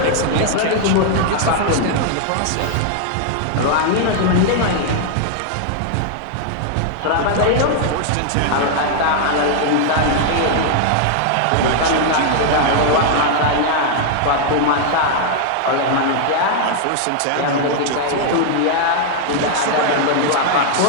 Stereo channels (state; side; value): different; both; correlation 0.00